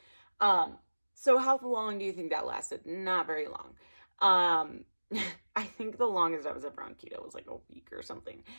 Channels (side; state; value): both; inverted; correlation -1.00